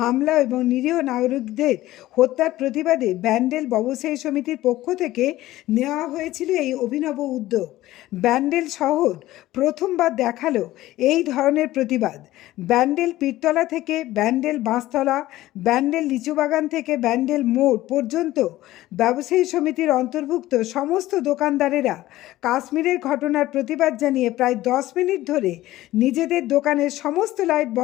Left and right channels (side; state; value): right; quieter; 16.0 dB